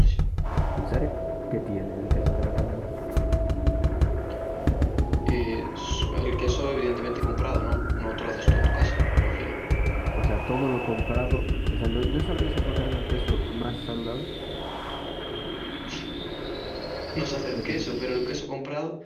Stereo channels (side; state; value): both; identical; correlation 1.00